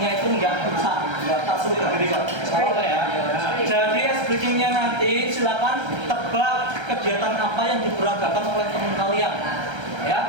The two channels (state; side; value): late; left; 1.3 ms